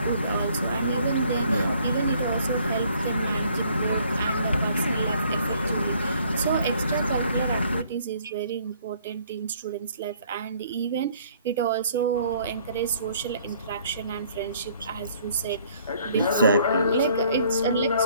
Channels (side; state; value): both; inverted; correlation -0.61